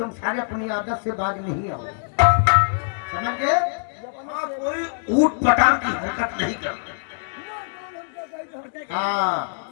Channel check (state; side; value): silent; right; 63 dB below the other